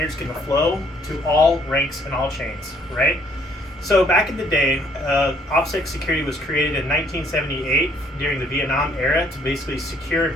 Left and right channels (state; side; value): normal; both; correlation 0.63